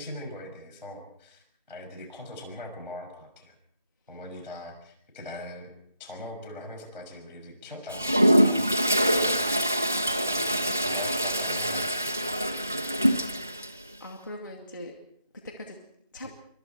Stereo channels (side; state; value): both; inverted; correlation -0.82